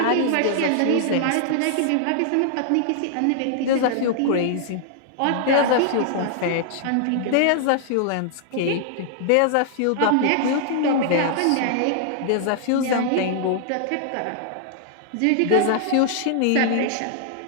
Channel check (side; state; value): both; different; correlation -0.01